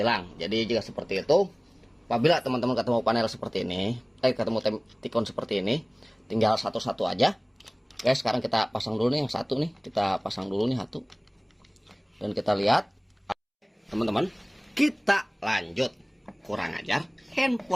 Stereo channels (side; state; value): both; identical; correlation 1.00